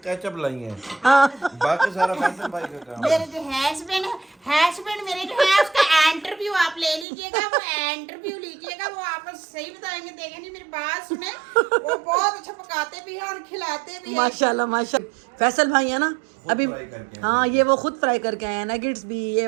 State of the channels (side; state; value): left; drops out; at 7.1 s